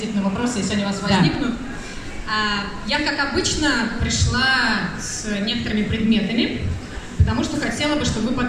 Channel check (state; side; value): identical; both; correlation 1.00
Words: на вопросы, если они у вас возникнут. Я, как обычно, пришла с некоторыми предметами, потому что хотела бы, чтобы вы